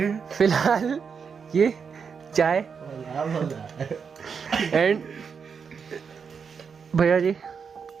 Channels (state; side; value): quieter; left; 6.1 dB